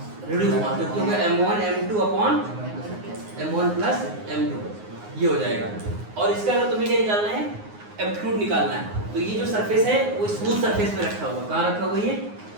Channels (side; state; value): left; late; 9.6 ms